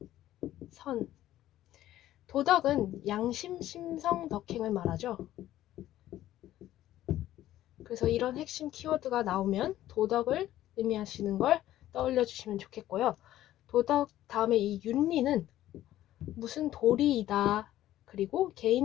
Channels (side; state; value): right; quieter; 13.6 dB